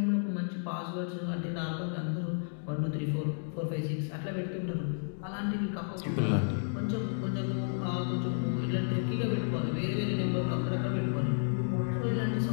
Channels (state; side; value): silent; right; digital silence